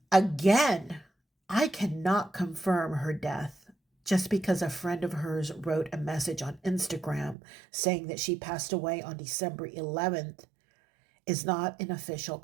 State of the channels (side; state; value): left; drops out; at 7.4 s